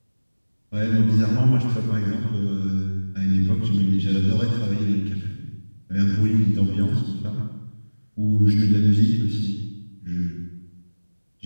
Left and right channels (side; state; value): both; inverted; correlation -1.00